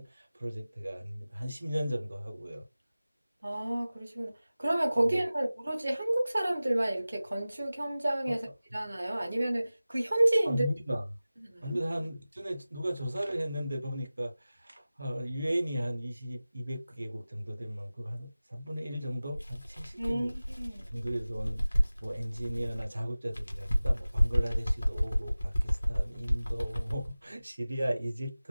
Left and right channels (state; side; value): inverted; both; correlation -0.97